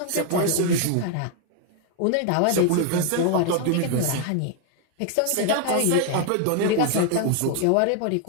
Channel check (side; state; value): both; different; correlation 0.00